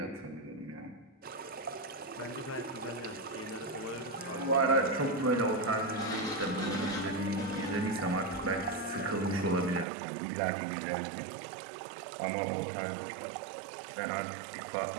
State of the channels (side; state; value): left; drops out; at 9.9 s